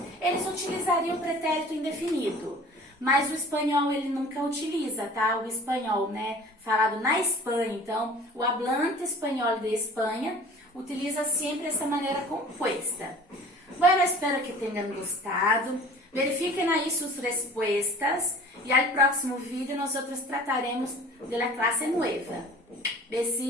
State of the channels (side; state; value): both; normal; correlation 0.45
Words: eles utilizariam o pretérito indefinido. Mas o espanhol ele nunca utiliza, tá? O espanhol, né, falado na Espanha. Então, o hablante espanhol de Espanha utiliza sempre essa maneira composta. Bueno, espero que tenham gostado. Verifiquem aí suas respostas e al próximo vídeo nós trataremos de la clase nueva.